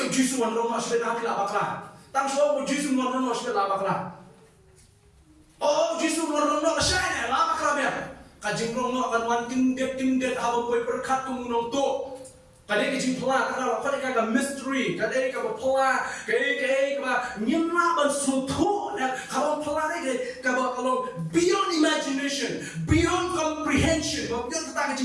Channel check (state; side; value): identical; both; correlation 1.00